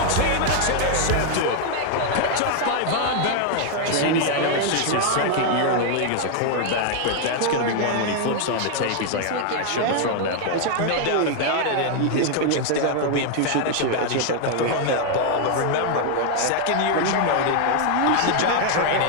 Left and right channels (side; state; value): both; different; correlation 0.00